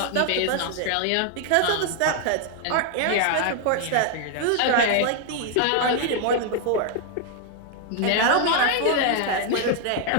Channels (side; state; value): both; different; correlation 0.00